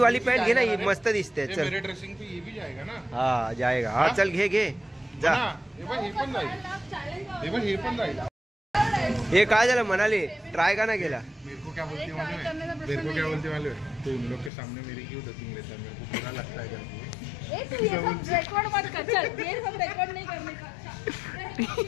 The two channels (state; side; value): drops out; right; at 14.5 s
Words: पॅन्ट घे ना, ही मस्त दिसते. चल मेरे ड्रेसिंग पे ये भी जाएगा ना. हा जाएगा. हा चल घे घे जा. हा, हे पण जाईल. हे पण जाईल. हे काय झालं म्हणाली ट्राय का ना केला. मेरे को क्या बोलती मालूम है? मेरे को क्या बोलती मालूम है? तो इन लोग के सामने मेरी क्यों डबिंग लेता है? मेरे को बुरा लगता है करके. ए तू ये सब रिकॉर्ड मत कर. चल ये सब रिकॉर्ड नहीं करने का.